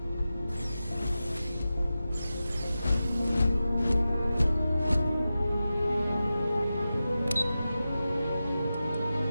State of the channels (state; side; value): inverted; both; correlation -0.93